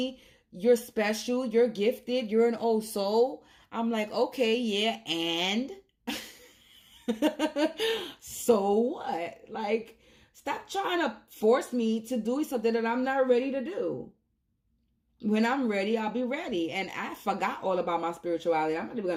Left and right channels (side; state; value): both; identical; correlation 1.00